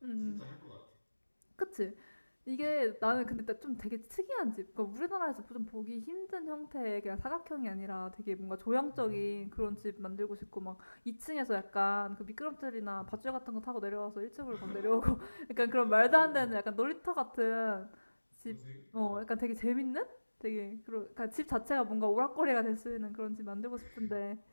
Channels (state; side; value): inverted; both; correlation -1.00